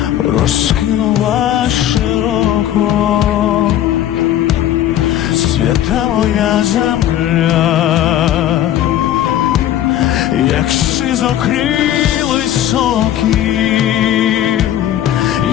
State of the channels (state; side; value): quieter; right; 11.8 dB